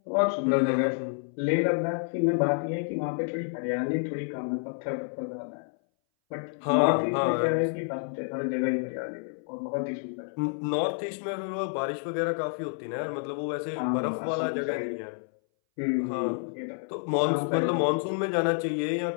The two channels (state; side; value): silent; right; 59 dB below the other